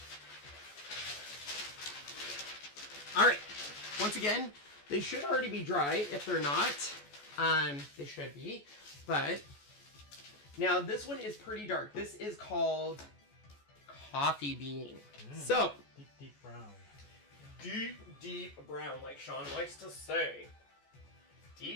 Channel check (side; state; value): right; late; 14 ms